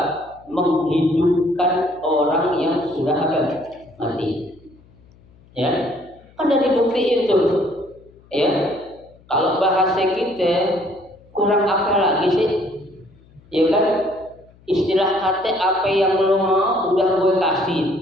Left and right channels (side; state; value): left; noise; hum, 28 dB below the sound